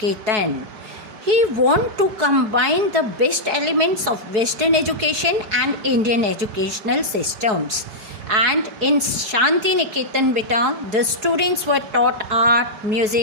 He wanted to combine the best elements of Western education and Indian educational systems. And in Shanti Niketan, beta, the students were taught art,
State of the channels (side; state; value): left; late; 4.7 ms